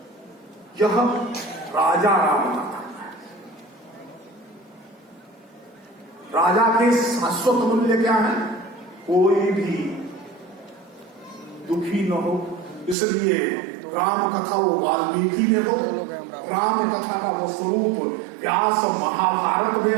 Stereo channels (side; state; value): left; drops out; at 13.0 s